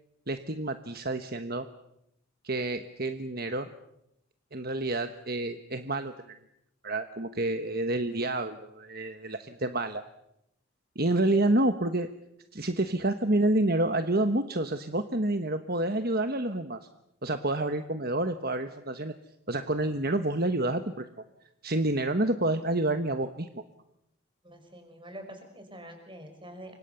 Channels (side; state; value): both; normal; correlation 0.32